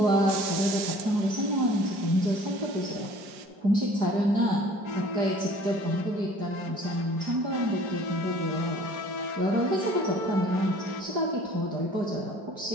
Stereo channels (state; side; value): late; left; 4.9 ms